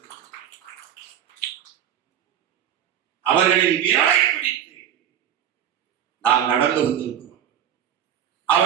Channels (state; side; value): quieter; left; 9.9 dB